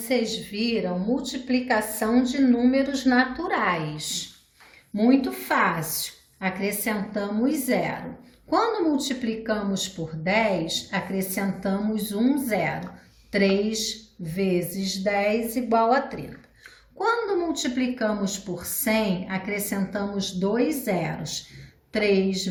viram multiplicação de números naturais. Muito fácil, acrescentamos zero. Quando multiplicamos por 10, acrescentamos um zero. 3 vezes 10 igual a 30. Quando multiplicamos por 100, acrescentamos dois zeros. 3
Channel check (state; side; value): identical; both; correlation 1.00